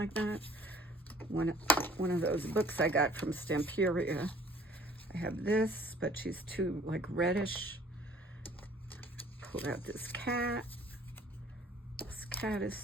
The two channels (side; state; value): both; normal; correlation 0.53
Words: that. One of those books I got from Stamperia. I have this, but she's too like reddish. Pulled out this cat. This cat is